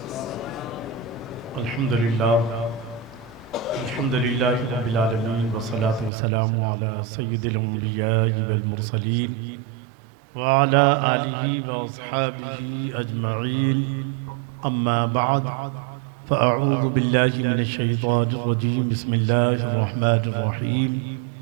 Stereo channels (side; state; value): left; drops out; at 6.1 s